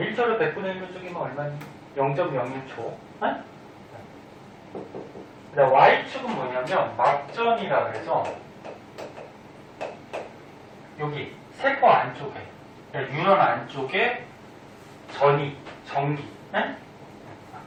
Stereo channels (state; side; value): identical; both; correlation 1.00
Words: 100분의 1로 쪼개면 얼마니? 0.01초. 네? 그다음 Y축은 뭐냐면 막전이라 그래서 여기 세포 안쪽에, 유런 안쪽에 전기, 네?